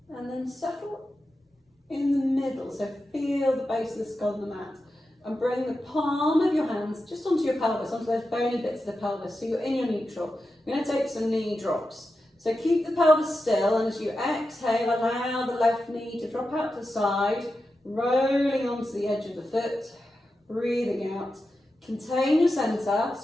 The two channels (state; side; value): normal; both; correlation 0.90